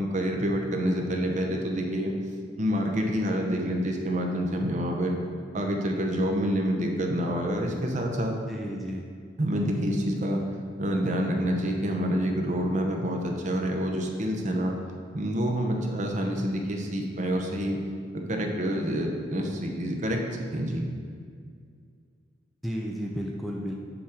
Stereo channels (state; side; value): normal; both; correlation 0.71